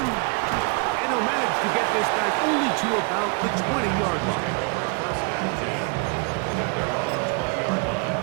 And he'll manage to get this back only to about the 20-yard line. First and 10 at their own 20-yard line.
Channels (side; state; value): left; quieter; 32.0 dB